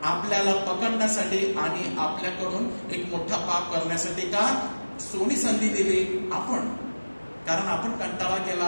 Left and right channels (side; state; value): both; inverted; correlation -1.00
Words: आपल्याला पकडण्यासाठी आणि आपल्याकडून एक मोठा पाप करण्यासाठी. का? सोनी संधी दिली आपण, कारण आपण कंटाळा